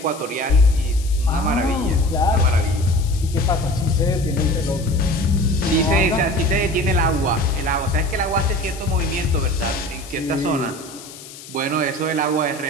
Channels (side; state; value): left; noise; hiss, 16 dB below the sound